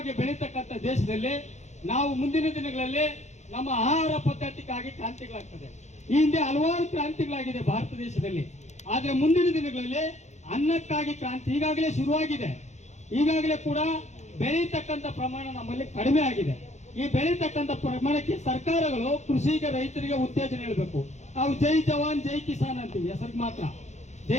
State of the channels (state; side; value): late; right; 0.33 ms